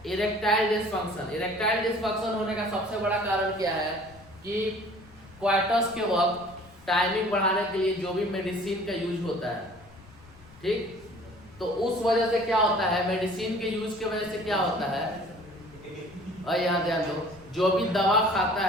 Erectile dysfunction. इरेक्टाइल डिसफंक्शन होने का सबसे बड़ा कारण क्या है कि क्वार्टर्स के वक्त टाइमिंग बढ़ाने के लिए जो भी मेडिसिन का यूज होता है, ठीक, तो उस वजह से क्या होता है, मेडिसिन के यूज की वजह से क्या होता है, और यहाँ ध्यान दो, जो भी दवा खाता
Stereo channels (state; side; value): noise; left; rumble, 23 dB below the sound